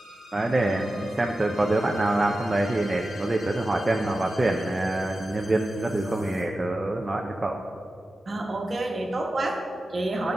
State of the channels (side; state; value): both; normal; correlation 0.93